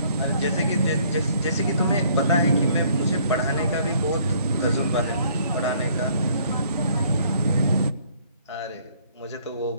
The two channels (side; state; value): both; inverted; correlation -0.62